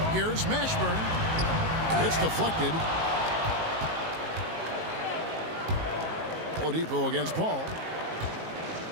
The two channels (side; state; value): left; late; 19 ms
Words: Here's Mashburn. It's deflected. Oladipo against Paul.